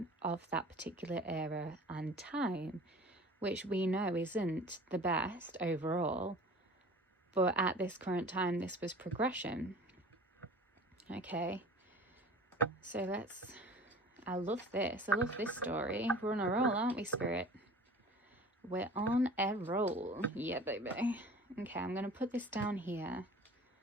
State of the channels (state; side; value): normal; both; correlation 0.43